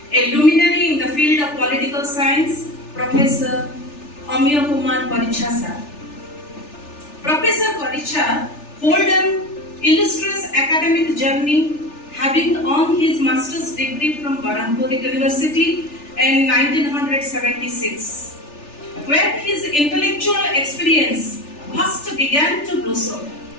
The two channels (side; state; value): right; late; 3.4 ms